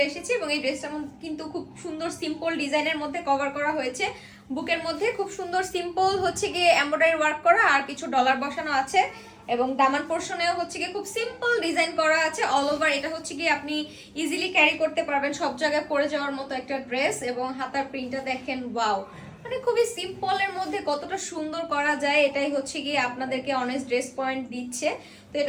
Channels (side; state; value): both; identical; correlation 1.00